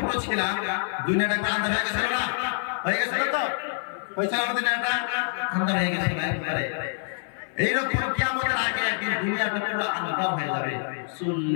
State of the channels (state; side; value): silent; right; 56 dB below the other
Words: ছিলাম দুনিয়াটা একবার আন্ধার হয়ে গেছিল না? হয়ে গেছিল তো? হয়েছিল আমাদের দুনিয়াটা আন্ধার হয়ে গেছিল একবারে। এইরকম কিয়ামতের আগে একদিন দুনিয়াটা পুরো আন্ধার হয়ে যাবে,